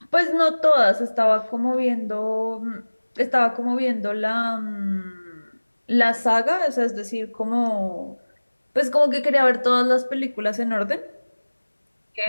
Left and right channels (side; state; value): both; inverted; correlation -1.00